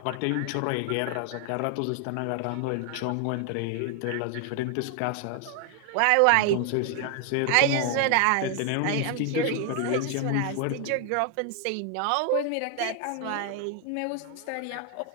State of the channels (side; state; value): both; different; correlation 0.00